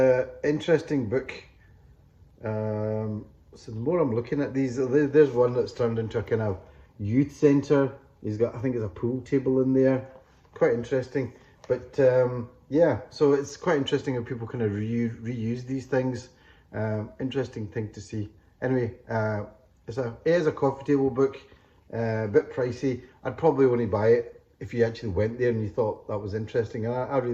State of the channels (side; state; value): both; identical; correlation 1.00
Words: interesting book. So the more I'm looking at these, there's one that's turned into a kind of youth centre. He's got, I think, there's a pool table in there. Quite interesting. But yeah, so it's quite interesting how people kind of reuse these things. Interesting thing to see. Anyway, it is a coffee table book. A bit pricey. I'd probably only buy it if you actually went there and you thought that was interesting. And I